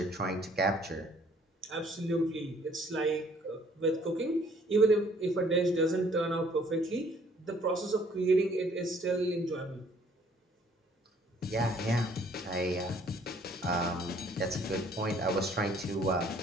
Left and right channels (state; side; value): normal; both; correlation 0.60